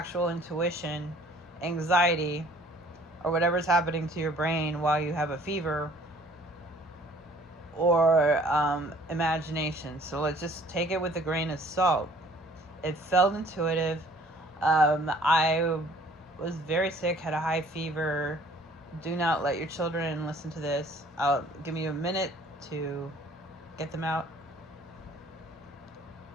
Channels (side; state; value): both; normal; correlation 0.55